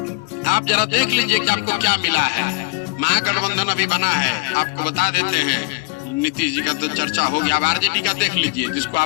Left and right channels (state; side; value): quieter; right; 27.4 dB